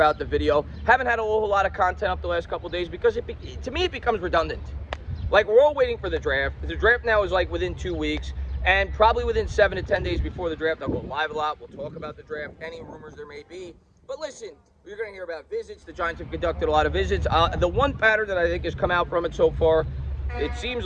the video. Haven't had a whole lot of content up the last couple of days because to me it becomes redundant. Like, we're all waiting for the draft. The draft now is like within 2 weeks, and probably within 7 to 10 days before the draft, I'll go live a lot. We'll talk about the draft, any rumors there may be. But listen, you're going to hear about visits. The Giants have conducted a lot of visits. The one pattern that I think has come out from it so far, it seems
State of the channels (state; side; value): identical; both; correlation 1.00